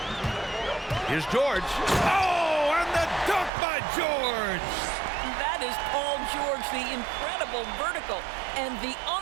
Here's George. Oh, and the dunk by George. That is Paul George, the incredible vertical and the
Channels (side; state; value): left; drops out; at 3.5 s